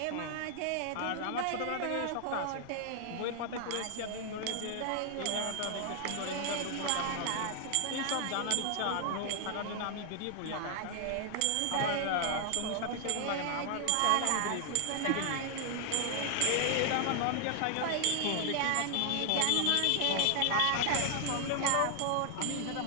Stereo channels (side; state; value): both; different; correlation 0.00